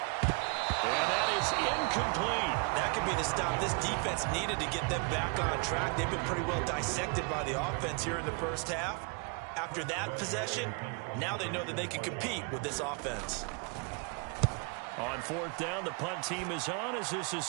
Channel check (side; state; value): left; quieter; 33.8 dB